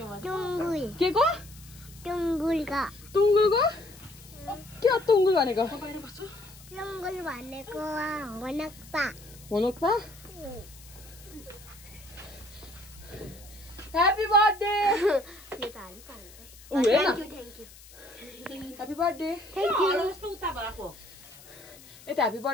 के को? टुङ्गुलको? के हो टुङ्गुल भनेको? टुङ्गुल भनेको होनक्पा। होनक्पा? Happy birthday. Happy birthday. यता ह्यापी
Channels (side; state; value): left; noise; hiss, 21 dB below the sound